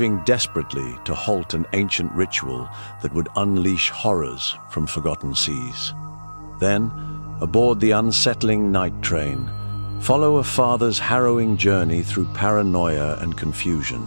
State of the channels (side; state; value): both; inverted; correlation -1.00